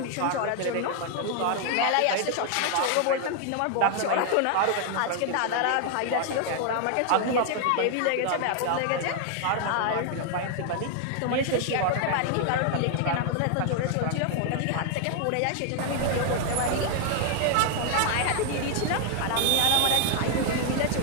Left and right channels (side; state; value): both; different; correlation 0.00